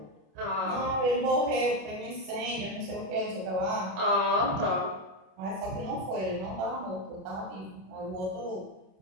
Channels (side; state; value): left; late; 27 ms